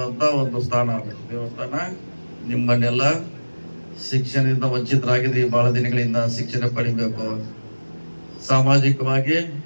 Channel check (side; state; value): both; inverted; correlation -1.00